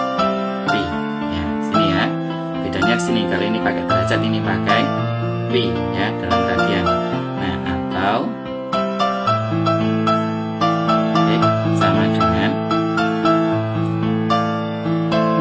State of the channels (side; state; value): both; identical; correlation 1.00